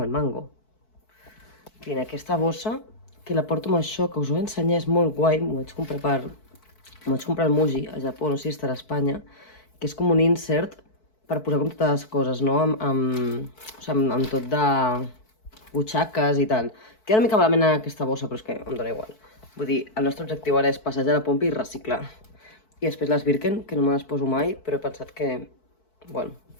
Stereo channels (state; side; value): late; right; 4.6 ms